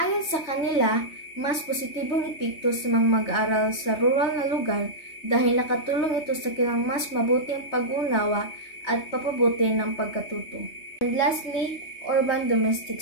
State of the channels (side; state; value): right; late; 3.2 ms